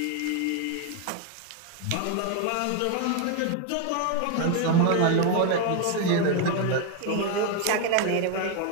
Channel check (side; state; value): both; different; correlation 0.01